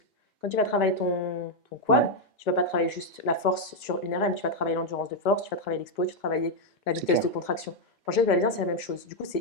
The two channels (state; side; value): normal; both; correlation 0.01